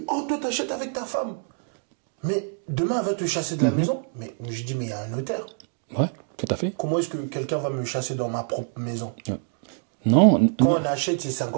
oh, toi, t'achètes avec ta femme. Mais demain, elle va te chasser de la maison. Mais je dis, mais il y a un notaire. Ouais, tout à fait. Comment est-ce que quelqu'un va me chasser dans ma propre maison? Ouais. Non. Quand on achète, c'est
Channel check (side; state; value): left; silent; 56 dB below the other